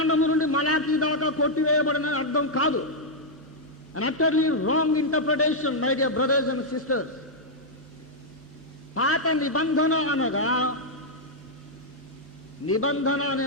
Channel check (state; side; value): normal; both; correlation -0.04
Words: నుండి మలాకీ దాకా కొట్టివేయబడిన అర్థం కాదు. An utterly wrong interpretation, my dear brothers and sisters. పాత నిబంధన అనగా, నిబంధన